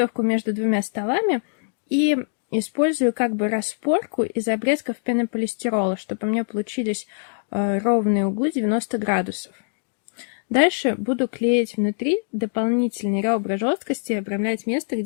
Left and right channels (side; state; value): right; silent; 63 dB below the other